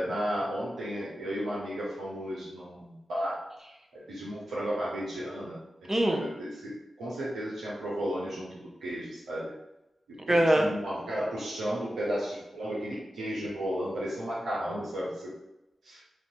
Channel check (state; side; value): normal; both; correlation 0.92